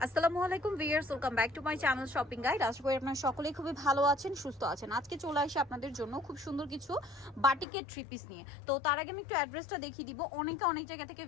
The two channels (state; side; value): drops out; right; at 7.7 s